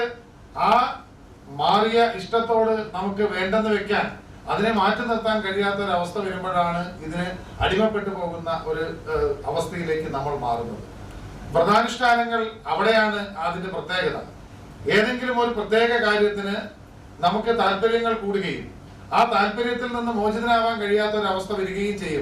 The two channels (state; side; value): identical; both; correlation 1.00